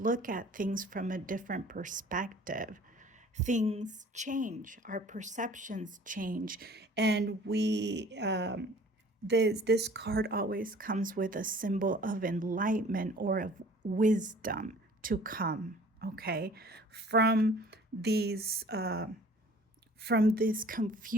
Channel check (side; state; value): both; normal; correlation 0.50